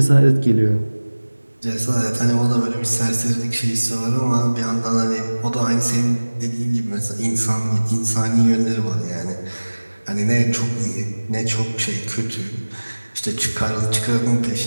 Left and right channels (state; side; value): inverted; both; correlation -1.00